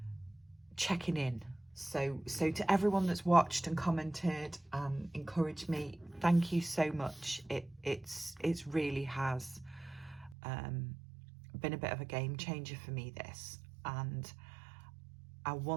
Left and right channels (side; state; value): left; drops out; at 10.4 s